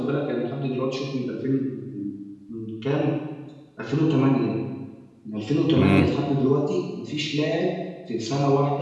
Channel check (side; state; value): both; identical; correlation 1.00